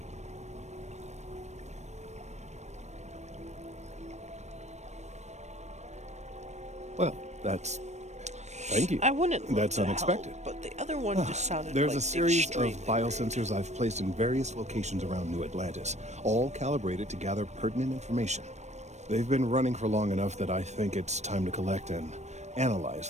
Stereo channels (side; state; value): left; late; 0.33 ms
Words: Well, thank you. I wouldn't love That's to unexpected. help, but the other one just sounded There's like a series of extremely biosensors I've placed in various locations around New Atlantis, all calibrated to gather pertinent information. They've been running for long enough that I think it's time to collect and